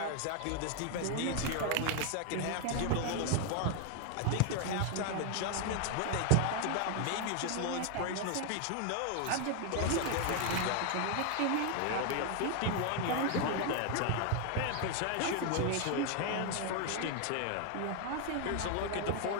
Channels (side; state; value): both; different; correlation 0.00